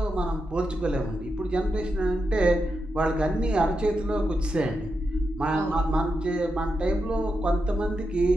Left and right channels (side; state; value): both; normal; correlation 0.86